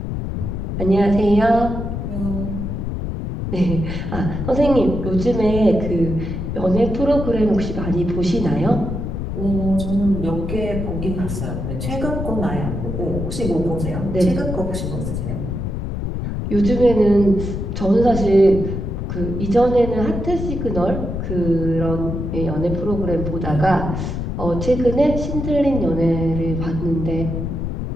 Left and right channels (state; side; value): noise; left; rumble, 4 dB below the sound